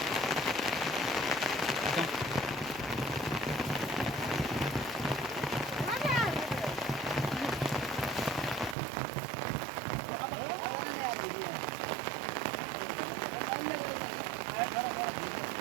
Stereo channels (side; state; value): left; drops out; at 8.8 s